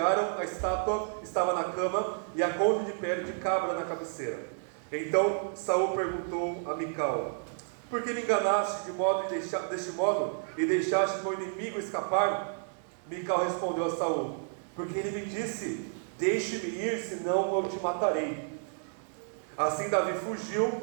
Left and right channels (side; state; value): left; silent; digital silence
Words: a estátua estava na cama e a colcha de pele de cabra na cabeceira. Então Saul perguntou a Mical: por que me enganaste deste modo e deixaste meu inimigo escapar? Mical respondeu a Saul: porque ele me disse: deixe-me ir, senão eu te matarei. Assim Davi fugiu